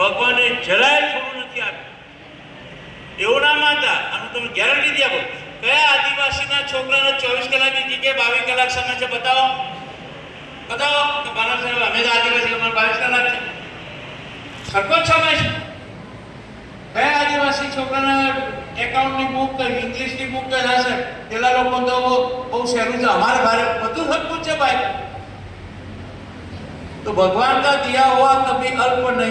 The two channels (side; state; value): both; identical; correlation 1.00